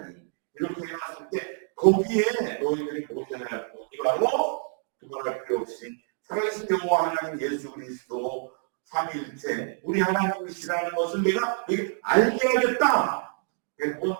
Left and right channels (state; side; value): silent; left; digital silence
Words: 이렇게 해놨을 때 거기에 너희들이 모셔야 할 분이 바로 두말할 필요 없이 살아계신 여호와 하나님 예수 그리스도 삼위일체 우리 하나님이시라는 것을 내가 너에게 알게 하겠다.